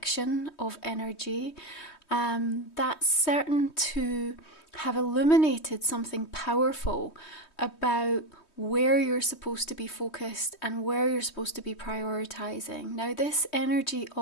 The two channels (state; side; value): late; right; 3.2 ms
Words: of energy, that's certain to have illuminated something powerful about where you're supposed to be focused and where you're supposed to be prioritizing. Now, this energy